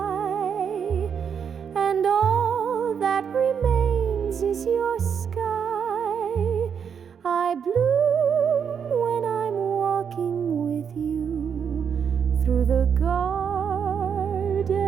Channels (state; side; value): quieter; left; 7.3 dB